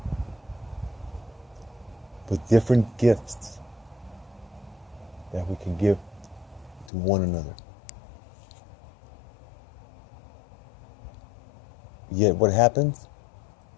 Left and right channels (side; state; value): right; drops out; at 6.9 s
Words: with different gifts that we can give to one another. Yet what happens?